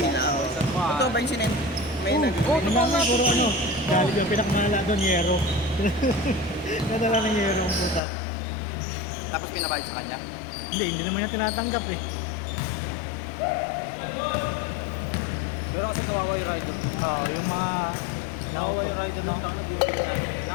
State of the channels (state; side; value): drops out; right; at 8.0 s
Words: ako. Totoo ba yung sinend? May nag- Oo, totoo nga. Puro ano, galing yung pinakmala doon, yero. Nadala ng yero ang puta. Tapos pinabayad sa kanya? Hindi naman niya tinatanggap eh. Pero kasi kawawa yung rider. Oo, yung mga... Kawawa yung rider lang doon.